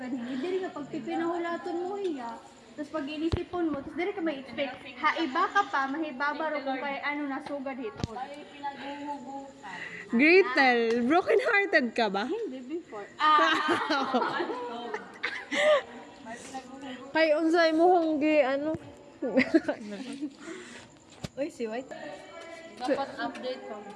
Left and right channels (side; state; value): both; identical; correlation 1.00